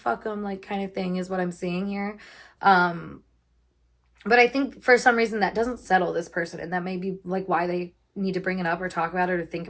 them, like kind of thing is what I'm seeing here. But I think for some reason that doesn't settle this person. And that may be like why they need to bring it up or talk about it or think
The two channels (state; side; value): identical; both; correlation 1.00